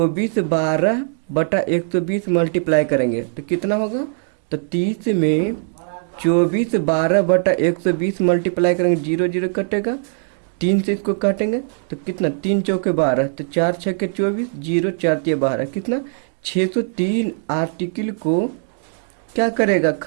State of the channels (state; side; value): silent; left; 63 dB below the other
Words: मल्टीप्लाई करेंगे तो कितना होगा, तो 30 में 24/12/120 मल्टीप्लाई करेंगे, 0 0 कटेगा, 3 से इसको काटेंगे तो कितना, 3 चौके 12, तो 4 6 24, 0 4 12, कितना 603 आर्टिकल को क्या करेगा,